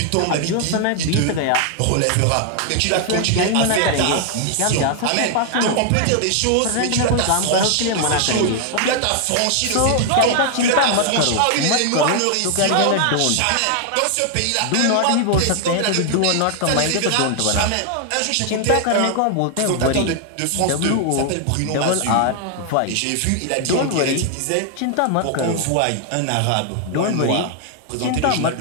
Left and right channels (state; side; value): different; both; correlation 0.00